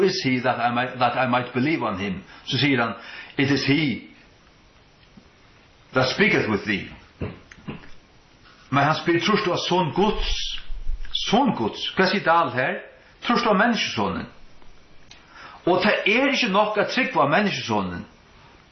is he that I might believe on him? Så sier han, it is he that speaketh with thee. Men han spyr, trust du a son Guds? Son Guds? Hva sier det alt her? Trust du a menneskesonen? Og det ikke nok at trygg var menneskesonen.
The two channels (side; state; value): both; identical; correlation 1.00